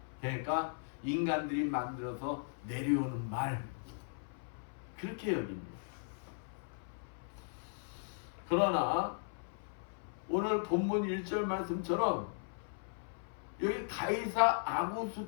그러니까 인간들이 만들어서 내려오는 말 그렇게 여깁니다. 그러나 오늘 본문 1절 말씀처럼 여기 가이사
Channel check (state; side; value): silent; right; 53 dB below the other